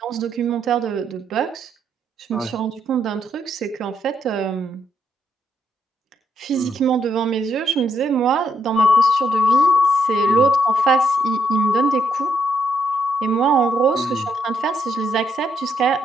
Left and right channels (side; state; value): both; normal; correlation 0.75